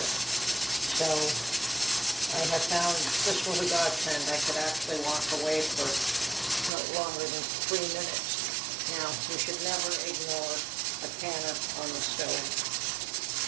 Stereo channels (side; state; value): left; drops out; at 6.7 s